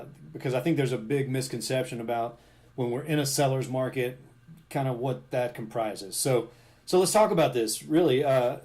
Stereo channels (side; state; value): both; identical; correlation 1.00